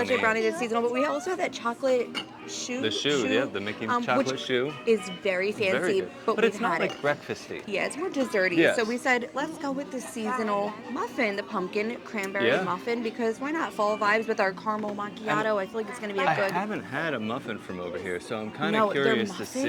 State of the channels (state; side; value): identical; both; correlation 1.00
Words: that's seasonal, but we also have that chocolate shoe. The shoe, the Mickey chocolate which shoe. is very fancy, Very good. but it's we've not had like it. breakfasty. Yeah, it's more desserty. Yes. So we said, let's go with the seasonal muffin, the pumpkin cranberry muffin, because why not? Fall vibes with our caramel macchiato. I feel like it's going to be a good. I haven't had a muffin from over here, so I'm kind of curious to